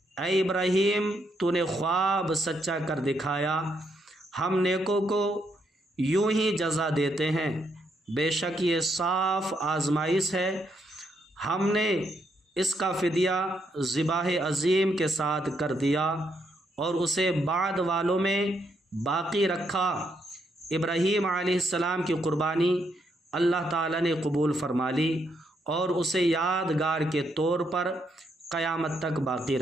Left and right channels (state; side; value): normal; both; correlation 0.77